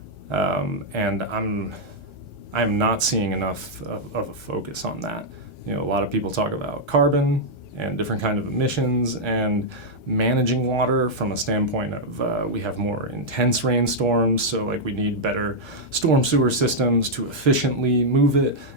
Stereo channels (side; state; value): right; late; 1.4 ms